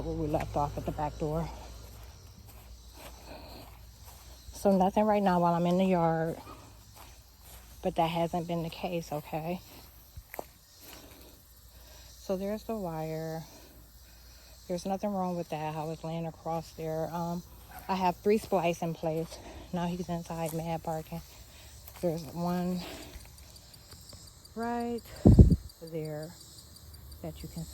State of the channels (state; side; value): identical; both; correlation 1.00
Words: where we left off at the back door. So nothing right now while I'm in the yard. But that hasn't been the case, okay? So there's the wire. There's nothing wrong with that. I was laying across there. I have 3 splice in place. Now he's inside mad barking. There's one right there that you can